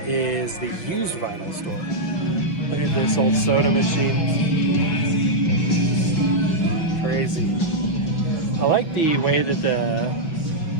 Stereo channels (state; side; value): late; right; 6.0 ms